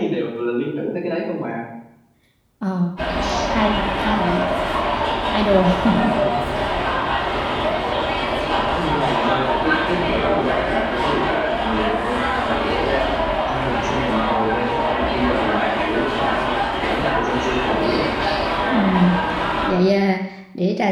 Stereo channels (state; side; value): identical; both; correlation 1.00